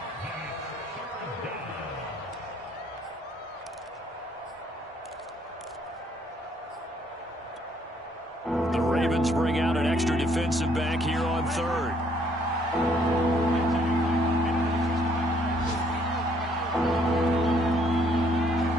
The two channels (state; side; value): normal; both; correlation 0.66